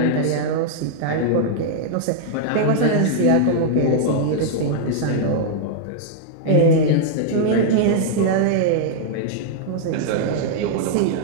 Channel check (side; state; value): both; different; correlation -0.01